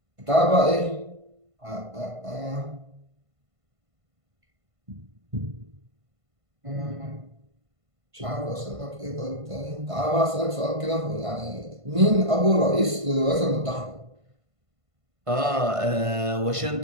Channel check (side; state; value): left; late; 1.5 ms